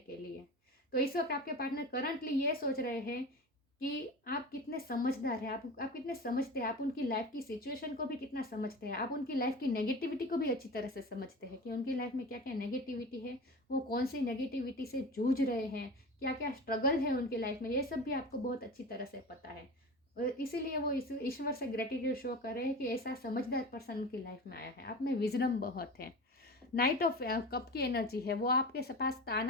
लिए। तो इस वक्त आपके पार्टनर करंटली ये सोच रहे हैं कि आप कितने समझदार हैं, आप कितने समझते हैं, आप उनकी लाइफ की सिचुएशन को भी कितना समझते हैं, आप उनकी लाइफ की नेगेटिविटी को भी अच्छी तरह से समझते हैं कि उनकी लाइफ में क्या क्या नेगेटिविटी है, वो कौन सी नेगेटिविटी से जूझ रहे हैं, क्या क्या स्ट्रगल है उनकी लाइफ में, ये सब भी आपको बहुत अच्छी तरह से पता है। और इसीलिए वो ईश्वर से ग्रेटिट्यूड शो कर रहे हैं कि ऐसा समझदार पर्सन उनकी लाइफ में आया है। आप में विजडम बहुत है। नाइट ऑफ कप की एनर्जी है, वो आपके पास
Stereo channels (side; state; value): both; normal; correlation 0.32